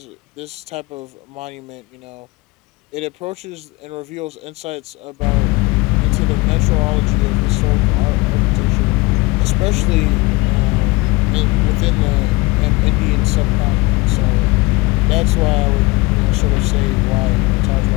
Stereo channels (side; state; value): right; quieter; 23.1 dB